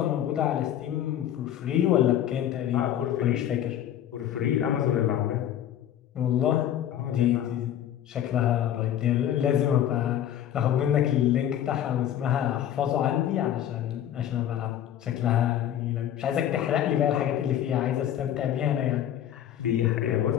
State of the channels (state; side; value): quieter; right; 10.9 dB